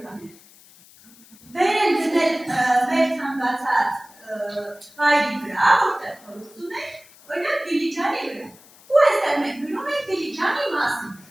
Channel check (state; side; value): noise; left; hiss, 25 dB below the sound